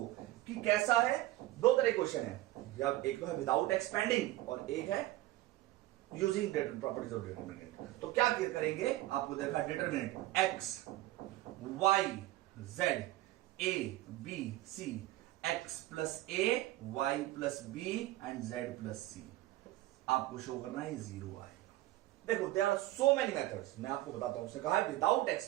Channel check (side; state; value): left; quieter; 16.8 dB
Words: कि कैसा है, दो तरह क्वेश्चन है, या एक तो है विदाउट एक्सपेंडिंग और एक है यूजिंग प्रॉपर्टीज ऑफ डिटरमिनेंट। तो क्या करेंगे, आपको देखा determinant X Y Z A B C, X plus A Y plus B and Z plus C, आपको शो करना है जीरो आएगा। देखो there are so many methods, मैं आपको बताता हूं। उसने कहा है विदाउट